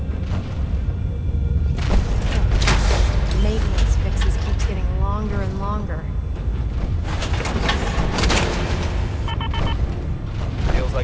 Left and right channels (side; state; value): both; identical; correlation 1.00